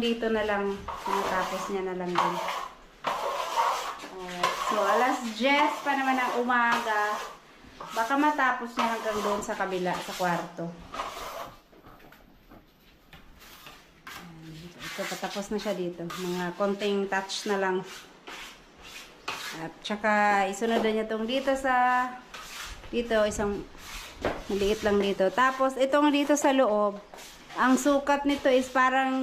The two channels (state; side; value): identical; both; correlation 1.00